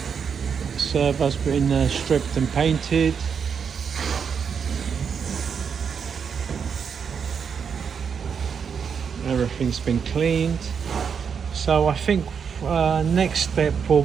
Servo's been stripped and painted. Everything's been cleaned. So I think next step will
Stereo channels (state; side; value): quieter; left; 6.7 dB